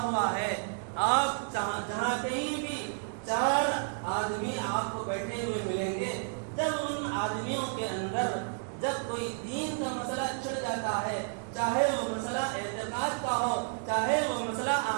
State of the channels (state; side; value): silent; left; 57 dB below the other